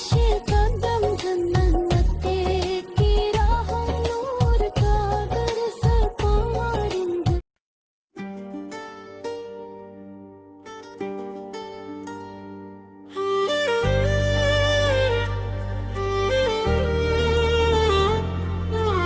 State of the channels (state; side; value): identical; both; correlation 1.00